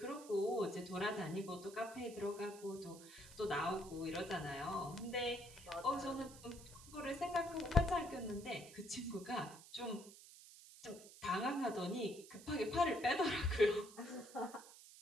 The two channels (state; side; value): noise; right; hiss, 18 dB below the sound